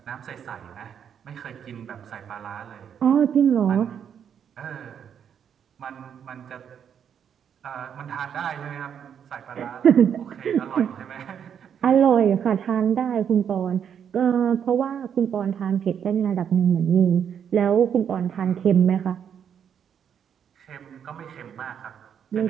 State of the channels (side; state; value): left; quieter; 8.2 dB